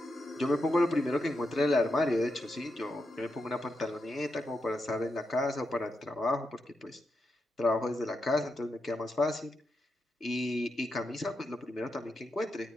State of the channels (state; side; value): normal; both; correlation 0.86